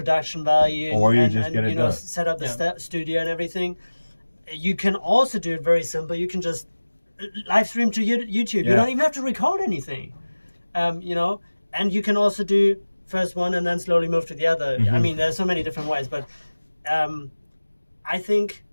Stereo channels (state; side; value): inverted; both; correlation -1.00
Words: value, or you and just get it you know, done. set up the studio and everything. You can also do it very simple. You can just live stream to YouTube. You don't even have to record anything. You know, and you can also do first one and then slowly move to the other. I mean, there's so many different ways, but I think